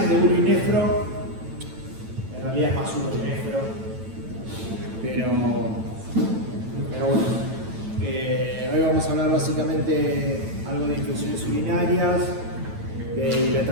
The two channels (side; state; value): left; late; 9.0 ms